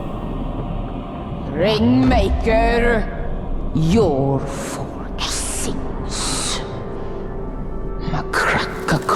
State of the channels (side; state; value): both; identical; correlation 1.00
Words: Ringmaker, your forge sings. A crack